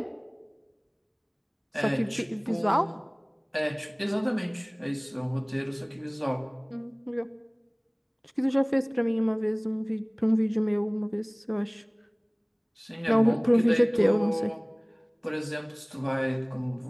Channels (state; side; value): identical; both; correlation 1.00